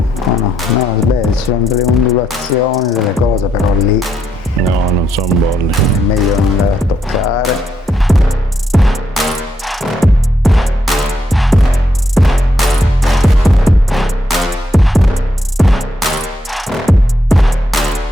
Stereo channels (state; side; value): normal; both; correlation 0.78